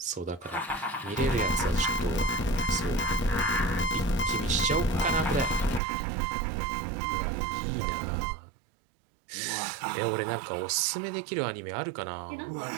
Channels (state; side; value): drops out; left; at 5.8 s